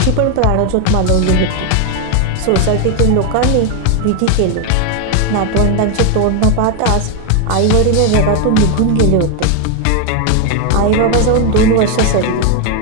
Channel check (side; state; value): both; different; correlation 0.01